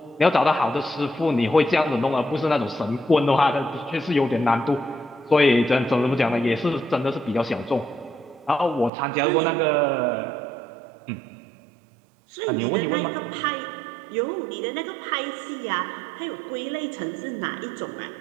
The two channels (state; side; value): drops out; left; at 8.9 s